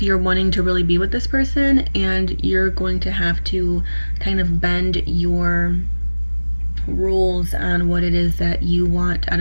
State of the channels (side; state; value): both; inverted; correlation -1.00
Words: you're wanting to really be with this person, and you're going to have to kind of bend your rules on what it is that you want out